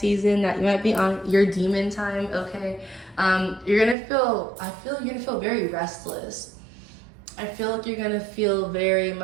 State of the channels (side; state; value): left; drops out; at 4.0 s